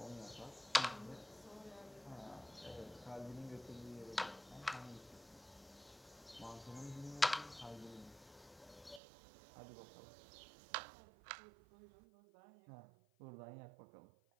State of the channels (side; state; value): left; drops out; at 9.0 s